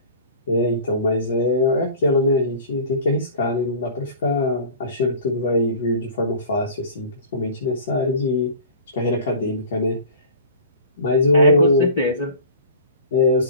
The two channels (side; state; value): both; inverted; correlation -0.42